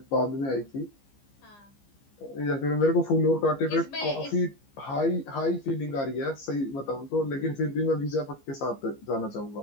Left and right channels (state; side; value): late; right; 15 ms